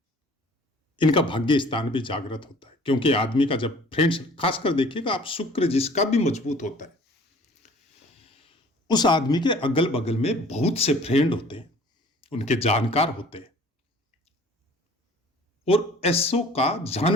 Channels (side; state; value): both; normal; correlation 0.51